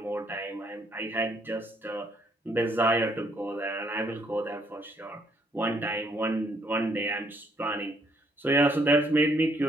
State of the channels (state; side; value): normal; both; correlation 0.68